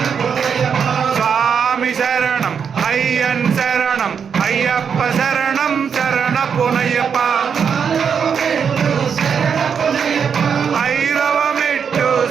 స్వామి శరణం అయ్యన్ శరణం అయ్యప్ప శరణం శరణపునయ్యప్ప ఐదవ మెట్టు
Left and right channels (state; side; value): quieter; left; 6.9 dB